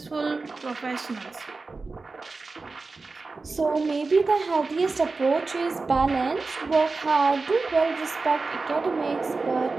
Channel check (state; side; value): quieter; left; 3.9 dB